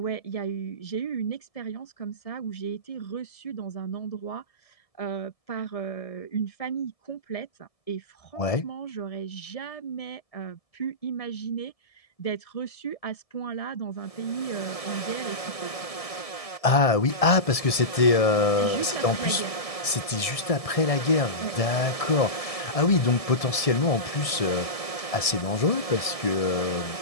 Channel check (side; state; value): right; late; 1.7 ms